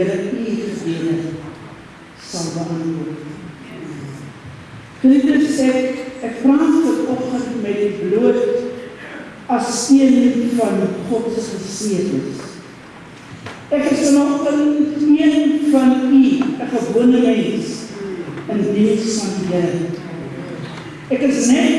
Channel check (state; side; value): identical; both; correlation 1.00